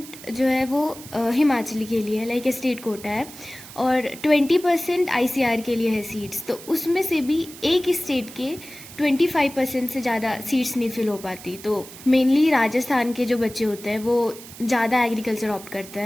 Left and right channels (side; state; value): right; noise; hiss, 16 dB below the sound